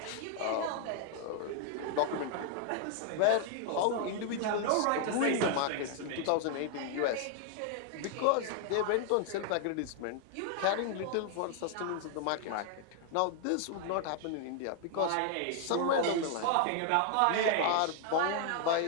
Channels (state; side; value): different; both; correlation 0.00